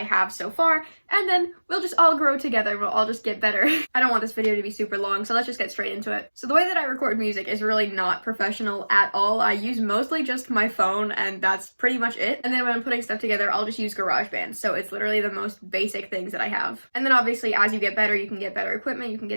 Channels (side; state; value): both; inverted; correlation -1.00